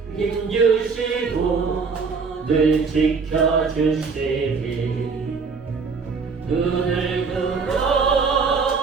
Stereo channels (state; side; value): quieter; left; 5.0 dB